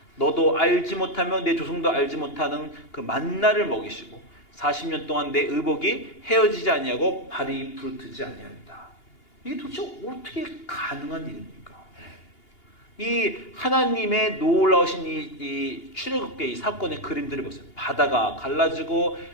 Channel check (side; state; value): right; late; 2.8 ms